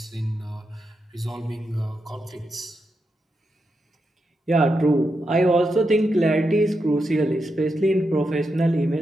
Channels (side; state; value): both; normal; correlation 0.85